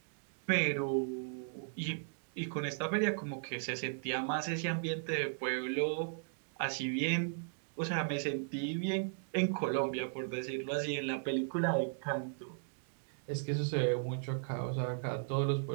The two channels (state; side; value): silent; left; digital silence